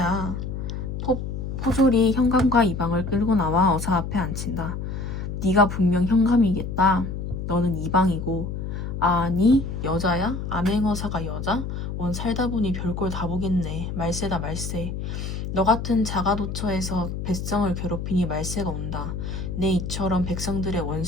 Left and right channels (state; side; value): noise; left; hum, 5 dB below the sound